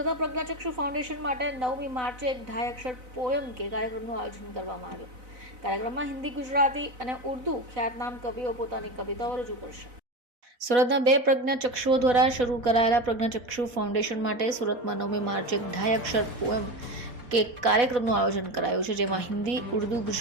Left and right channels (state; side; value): late; left; 4.1 ms